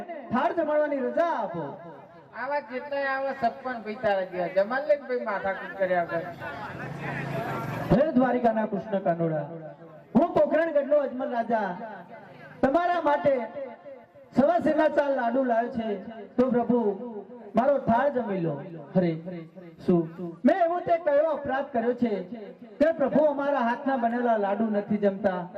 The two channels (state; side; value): identical; both; correlation 1.00